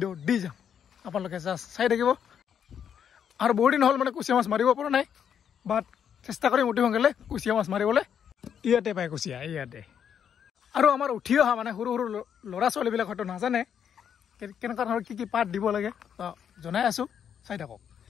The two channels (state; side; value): quieter; right; 8.3 dB